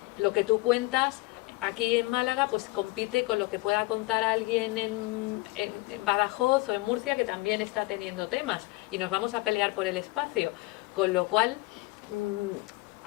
lo que tú cuentas aquí en Málaga pues compite con lo que pueda contar alguien en Badajoz o en Murcia, que también está teniendo temas, y nos vamos a pelear por el espacio, con lo cual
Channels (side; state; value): right; quieter; 22.8 dB